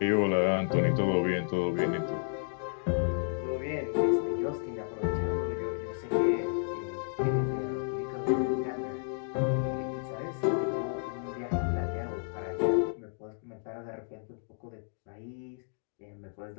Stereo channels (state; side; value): silent; right; digital silence